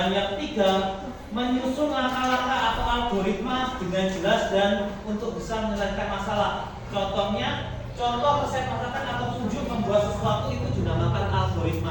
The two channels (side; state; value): both; identical; correlation 1.00